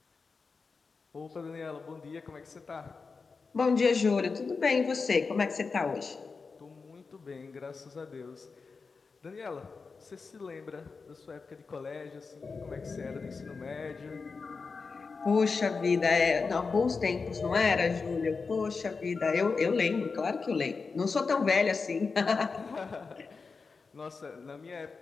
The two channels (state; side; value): quieter; right; 4.7 dB